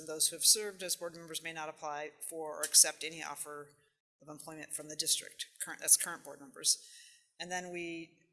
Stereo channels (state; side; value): identical; both; correlation 1.00